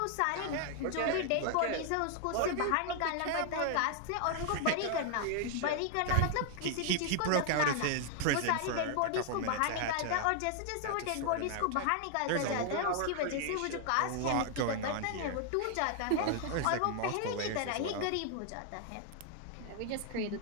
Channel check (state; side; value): different; both; correlation 0.00